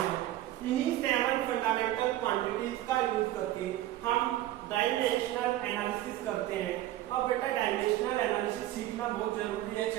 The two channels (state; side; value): quieter; left; 14.4 dB